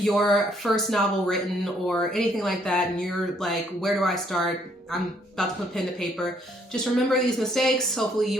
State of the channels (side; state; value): both; normal; correlation 0.67